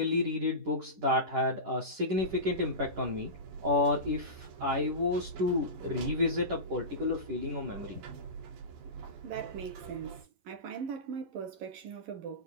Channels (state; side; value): late; left; 11 ms